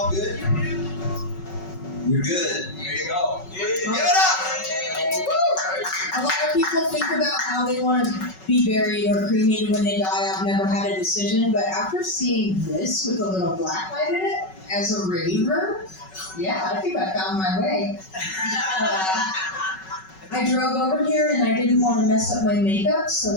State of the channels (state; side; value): late; right; 5.3 ms